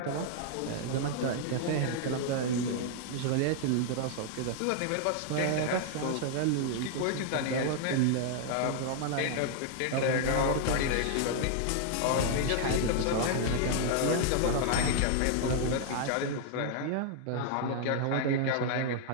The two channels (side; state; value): both; different; correlation -0.01